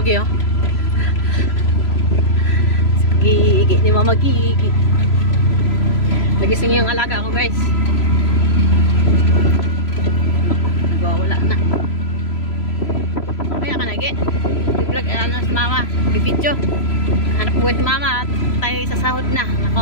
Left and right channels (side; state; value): right; late; 3.0 ms